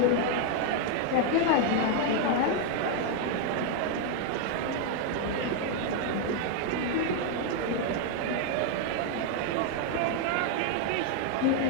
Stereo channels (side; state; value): both; different; correlation 0.01